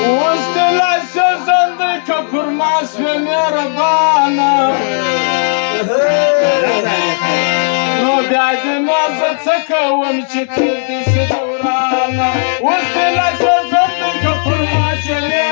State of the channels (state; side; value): silent; right; digital silence